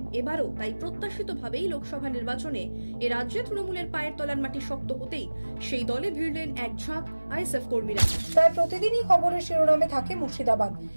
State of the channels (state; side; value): inverted; both; correlation -1.00